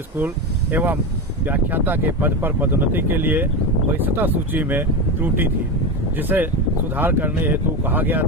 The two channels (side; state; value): both; normal; correlation 0.18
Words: स्कूल एवं व्याख्याता के पद पर पदोन्नति के लिए वरिष्ठता सूची में त्रुटि थी, जिसे सुधार करने हेतु कहा गया